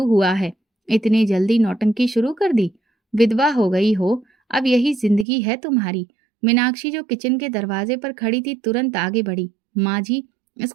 हुआ है, इतनी जल्दी नौटंकी शुरू कर दी? विधवा हो गई हो, अब यही जिंदगी है तुम्हारी। मीनाक्षी जो किचन के दरवाजे पर खड़ी थी तुरंत आगे बढ़ी। माँ जी,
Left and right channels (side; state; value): left; drops out; at 5.2 s